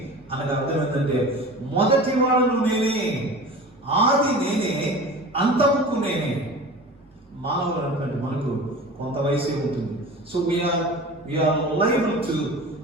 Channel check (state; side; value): normal; both; correlation 0.36